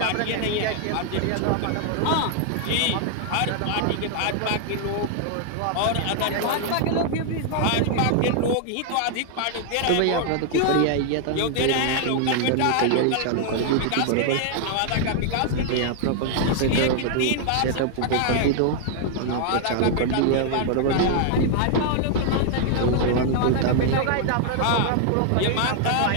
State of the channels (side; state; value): both; different; correlation 0.00